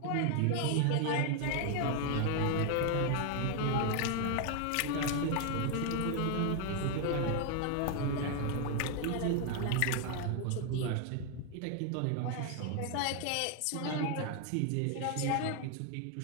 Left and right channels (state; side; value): different; both; correlation 0.00